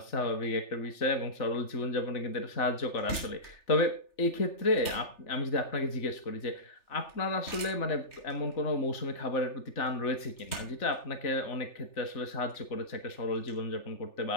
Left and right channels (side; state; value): right; late; 3.4 ms